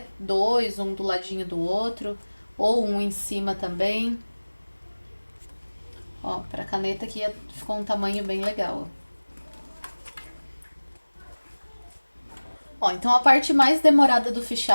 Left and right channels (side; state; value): both; inverted; correlation -1.00